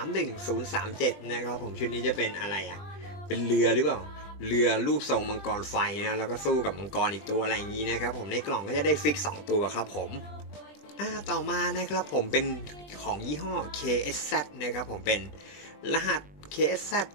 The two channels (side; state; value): right; late; 20 ms